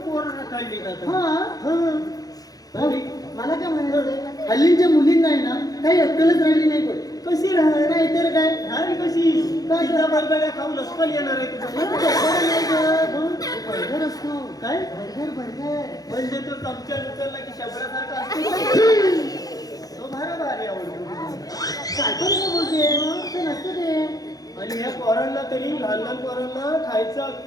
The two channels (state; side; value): late; right; 0.18 ms